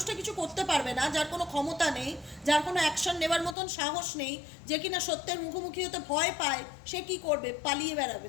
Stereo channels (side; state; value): right; drops out; at 3.6 s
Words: কিছু করতে পারবে না, যার কোনো ক্ষমতা নেই, যার কোনো অ্যাকশন নেবার মতন সাহস নেই, যে কিনা সত্যের মুখোমুখি হতে ভয় পায়, সে কি করবে? পালিয়ে বেড়াবে।